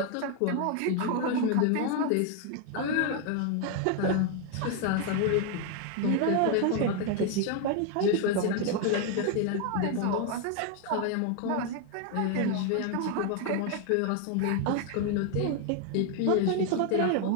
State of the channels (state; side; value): different; both; correlation 0.01